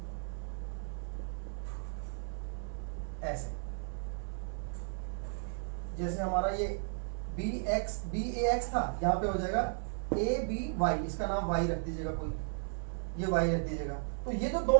ऐसे, जैसे हमारा ये बी ए एक्स था, यहाँ पे हो जाएगा ए बी वाई, इसका नाम वाई रख दीजिएगा कोई, ये y रख दीजिएगा। तो ये जो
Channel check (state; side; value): silent; left; 54 dB below the other